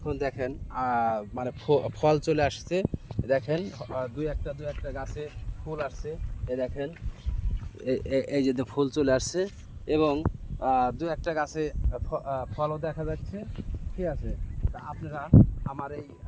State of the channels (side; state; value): both; identical; correlation 1.00